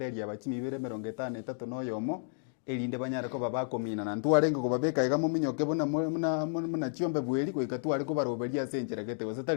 abachimibere 53 no yomo elinde banyare ko babakomina na ntwarenge ko babeka igamo minyoke bona muna chiombe bweli ko ikatware ko baroberia senjera gete gose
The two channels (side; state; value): right; silent; digital silence